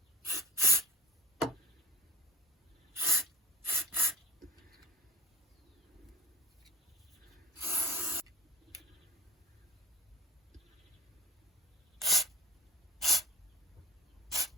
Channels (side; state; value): both; normal; correlation 0.41